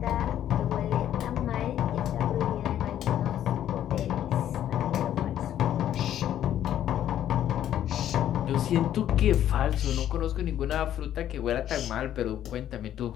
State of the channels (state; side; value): quieter; right; 11.2 dB